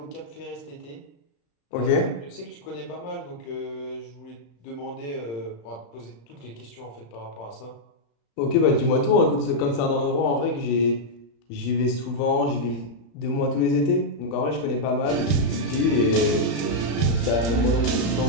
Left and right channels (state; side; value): late; right; 34 ms